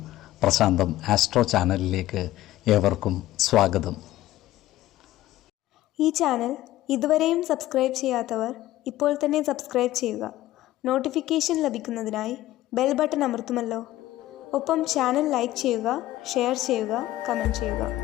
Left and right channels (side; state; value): right; quieter; 15.3 dB